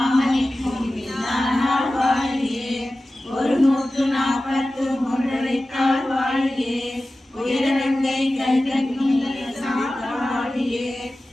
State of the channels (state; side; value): normal; both; correlation 0.95